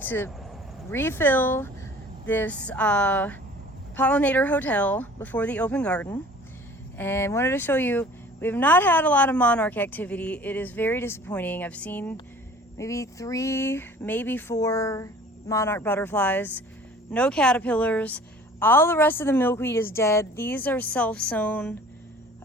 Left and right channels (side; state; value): both; normal; correlation 0.47